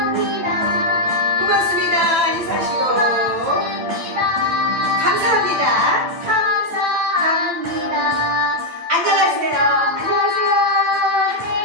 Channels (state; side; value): late; left; 9.1 ms